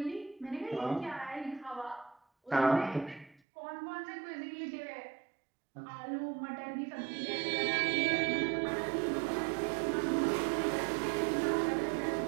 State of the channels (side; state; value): left; drops out; at 3.4 s